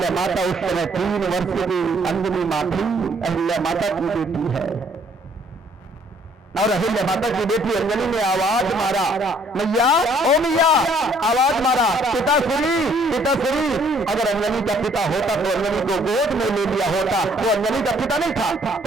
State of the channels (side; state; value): both; normal; correlation 0.63